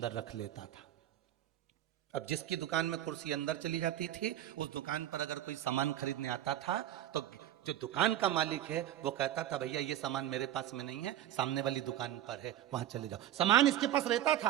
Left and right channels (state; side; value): quieter; left; 12.2 dB